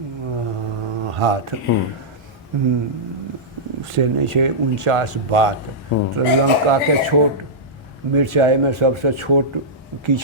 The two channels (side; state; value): both; normal; correlation -0.13